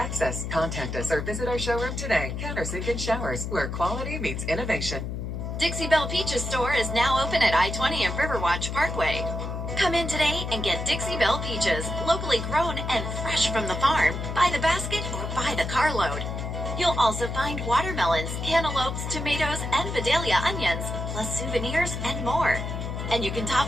Contact us or visit our showroom today. Countersink and Showers, where quality meets innovation. Dixie Belle Peaches store is now open at I-20 and Riverwatch Parkway. Come in today and get Dixie Belle Peaches, locally grown and fresh from the farm, by the basket or by the carload. You'll also find watermelons, cantaloupes, tomatoes, and Vidalia onions, plus souvenirs and more. And you can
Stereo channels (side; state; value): left; noise; hum, 4 dB below the sound